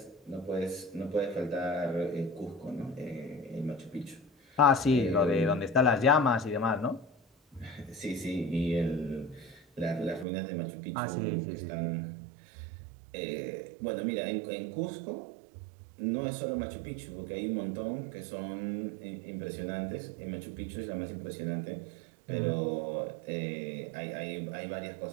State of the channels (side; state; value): left; drops out; at 10.2 s